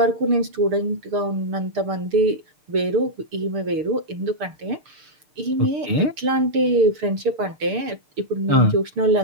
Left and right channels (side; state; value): left; late; 6.8 ms